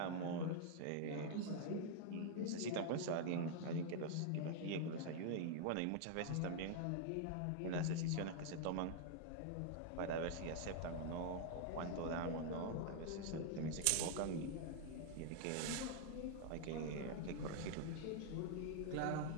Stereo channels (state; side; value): different; both; correlation 0.00